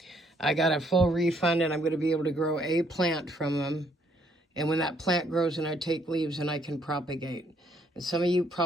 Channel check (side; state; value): both; normal; correlation 0.68